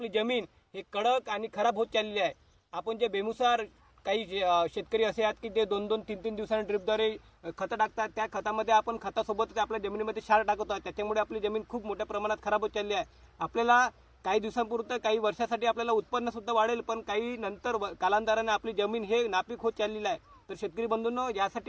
जमीन हे कडक आणि खराब होत चाललेली आहे. आपण जे बेमुसार काही शेतकरी असे आहेत की ते 2-2, 3-3 दिवसांनी ड्रिपद्वारे खतं टाकतात. त्या खतामध्ये आपण खतासोबत आपल्या जमिनीमध्ये क्षार टाकतो. त्याच्यामुळे आपली जमीन खूप मोठ्या प्रमाणात खराब होत चालली आहे. आपल्याला काही दिवसांपुरतं काही वर्षासाठी आपल्याला उत्पन्न सुद्धा वाढेल, पण काही नंतर कालांतराने आपली जमीन हे नापीक होत चाललेली आहे. तर शेतकरी बंधूंनो,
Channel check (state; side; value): identical; both; correlation 1.00